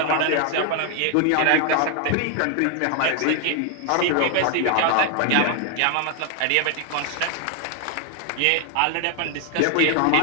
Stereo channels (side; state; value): both; different; correlation 0.00